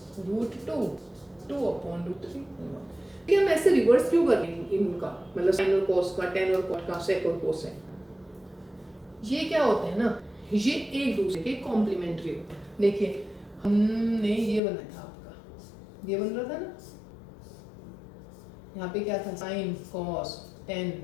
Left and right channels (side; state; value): right; drops out; at 14.6 s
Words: 2/√3। कि हम ऐसे रिवर्स क्यों कर रहे हैं इनका, मतलब साइन और cos का, tan और cot का, sec और cosec? ये क्या होते हैं ना, ये एक दूसरे के कॉम्प्लीमेंट्री होते हैं। देखिए हमने ये बनाया था, आपका ये बन रहा था ना, यहाँ पे क्या था? Sine cos tan